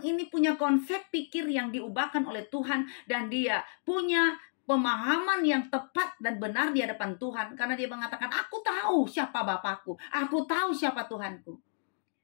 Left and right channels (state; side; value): silent; right; digital silence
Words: ini punya konsep pikir yang diubahkan oleh Tuhan dan dia punya pemahaman yang tepat dan benar di hadapan Tuhan, karena dia mengatakan aku tahu siapa Bapakku, aku tahu siapa Tuhanku,